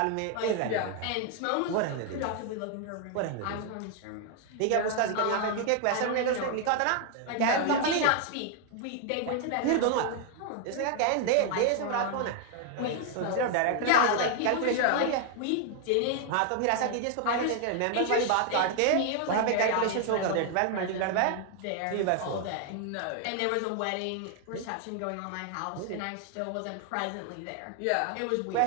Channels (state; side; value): different; both; correlation 0.00